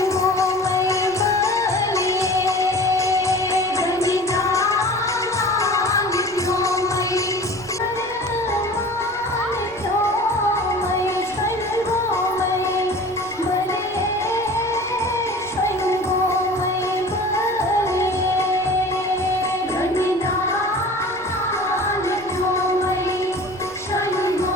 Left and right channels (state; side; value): noise; right; rumble, 22 dB below the sound